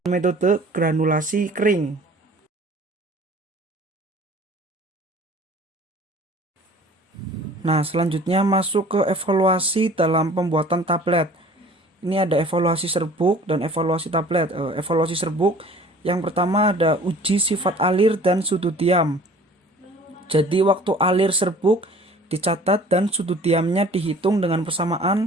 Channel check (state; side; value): normal; both; correlation 0.48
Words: metode granulasi kering. Nah, selanjutnya masuk ke evaluasi dalam pembuatan tablet. Ini ada evaluasi serbuk dan evaluasi tablet. Evaluasi serbuk yang pertama ada uji sifat alir dan sudut diam. Jadi waktu alir serbuk dicatat dan sudut diamnya dihitung dengan persamaan